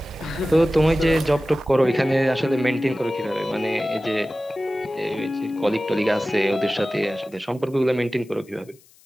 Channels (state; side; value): noise; left; hiss, 29 dB below the sound